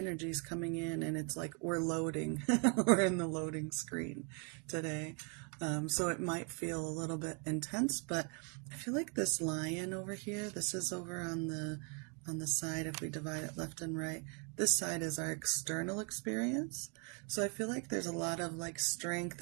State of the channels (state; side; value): quieter; left; 36.5 dB